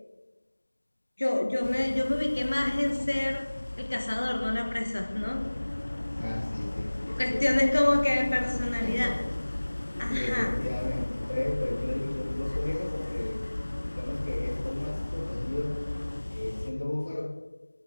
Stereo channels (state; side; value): inverted; both; correlation -1.00